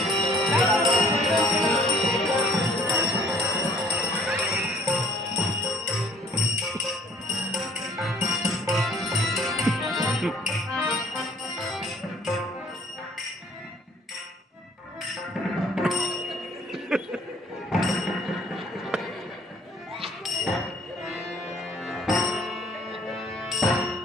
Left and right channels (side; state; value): both; normal; correlation 0.58